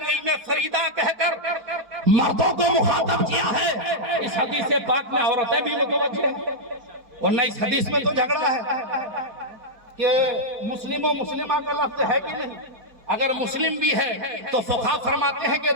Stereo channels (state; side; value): late; left; 4.6 ms